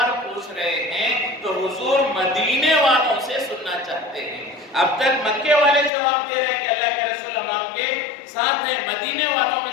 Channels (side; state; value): right; drops out; at 5.9 s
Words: پوچھ رہے ہیں تو حضور مدینے والوں سے سننا چاہتے ہیں۔ اب تک مکے والے جواب دے رہے ہیں کہ اللہ کے رسول ہم آپ کے ساتھ ہیں، مدینے والوں میں